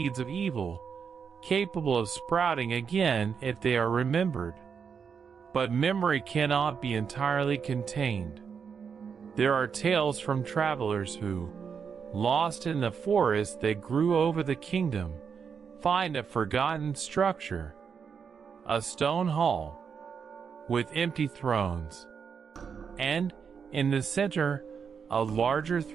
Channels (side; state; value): left; quieter; 6.5 dB